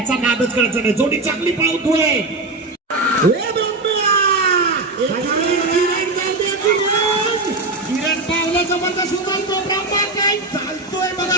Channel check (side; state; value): left; quieter; 3.1 dB